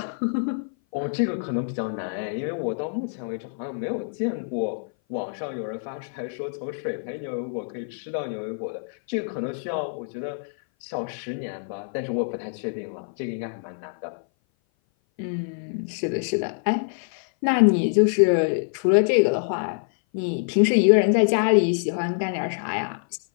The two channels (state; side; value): silent; right; 57 dB below the other